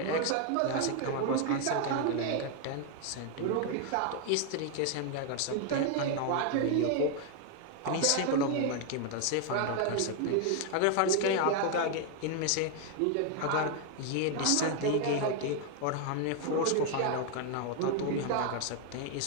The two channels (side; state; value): both; different; correlation 0.00